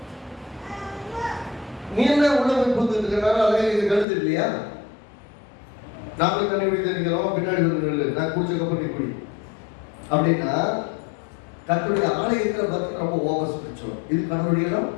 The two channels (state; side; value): drops out; right; at 4.0 s